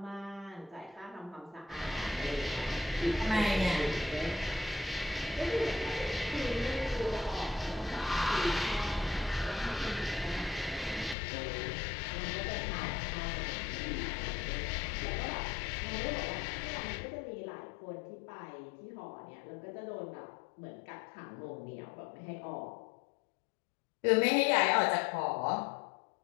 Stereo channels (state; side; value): drops out; right; at 11.2 s